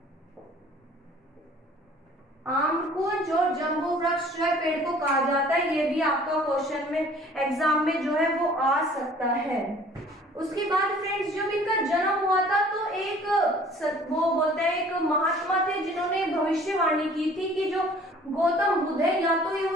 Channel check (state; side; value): normal; both; correlation 0.52